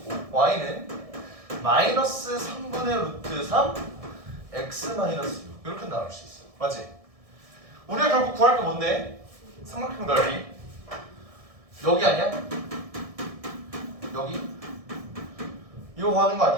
y는 마이너스 3분의 루트 3 x 마이너스 6 이렇게 나올 수 있어. 맞지? 우리가 결국 구할 게 뭔데? 삼각형 넓이 여기 아니야? 여기? 이거 구하는 거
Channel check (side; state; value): left; late; 1.6 ms